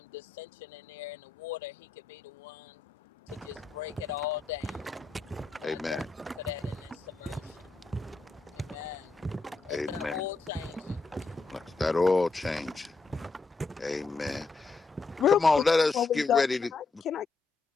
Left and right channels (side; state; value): right; quieter; 3.8 dB